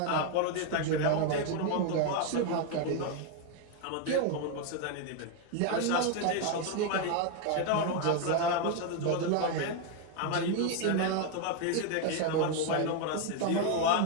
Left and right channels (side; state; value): both; different; correlation 0.01